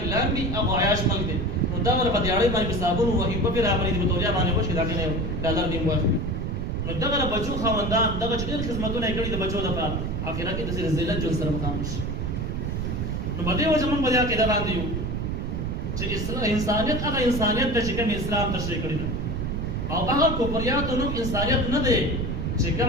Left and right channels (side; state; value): right; noise; rumble, 2 dB below the sound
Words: لامبي هغه عیاش ملک دی نو دغه په دیاړۍ باندې په صابون وهي په پې راغلی دي په تولیا باندې وشي د هغې نه یو ډالر نیم واخلي نو دغه د بچو خاوندان دغه چې ډېر خدمتونه یې کړي د بچو دپاره آخرت کې داسې ذلت ژوند سره مخامخ شي نو په دې وجه موږ په دې عقیده باندې یو چې انسانیت هغه انسانیت ده چې کوم اسلام تشریح کړی ده او هغه کفریاتو نوم انسانیت نه دی چې